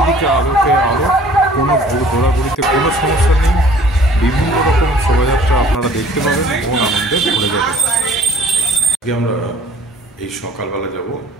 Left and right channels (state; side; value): normal; both; correlation 0.52